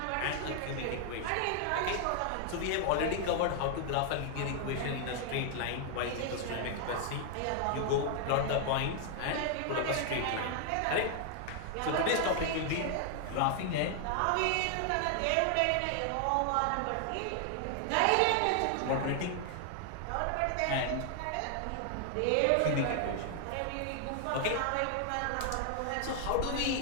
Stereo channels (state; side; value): different; both; correlation 0.00